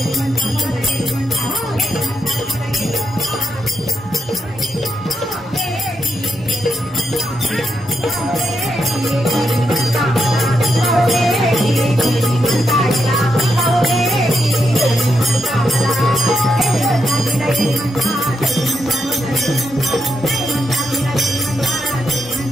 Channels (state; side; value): normal; both; correlation 0.82